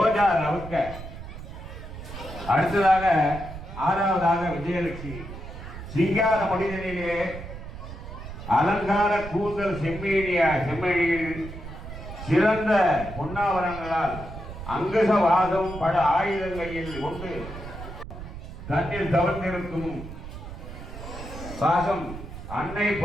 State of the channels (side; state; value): right; noise; rumble, 11 dB below the sound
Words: ரவுக்க. அடுத்ததாக 6வதாக விஜயலட்சுமி. சிங்கார மனிதனிலே அலங்கார கூந்தல் செம்மணியில் சிறந்த பொன்னாவரங்களால் அங்குச வாசம் பல ஆயுதங்களில் கொண்டு தன்னில் தவழ்ந்திருக்கும் பாசம் அன்னை